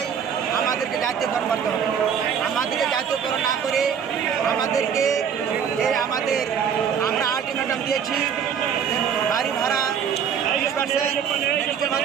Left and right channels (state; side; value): quieter; left; 7.6 dB